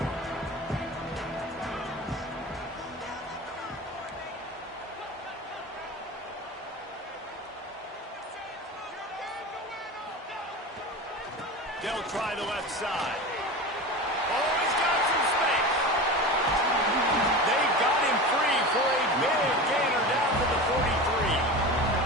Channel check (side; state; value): both; normal; correlation 0.29